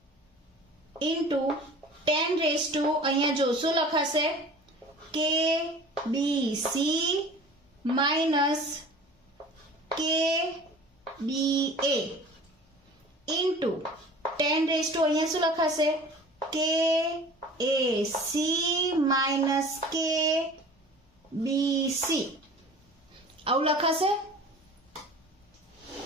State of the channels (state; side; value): normal; both; correlation 0.43